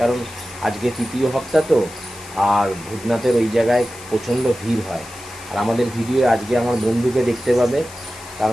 কারণ আজকে তৃতীয় হপ্তা তো। আর ভূতনাথের ওই জায়গায় প্রচণ্ড ভিড় হয়। আর আমাদের ভিডিও আজকে আমার বন্ধুকে দেখতে পাবে,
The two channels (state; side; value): noise; left; hiss, 18 dB below the sound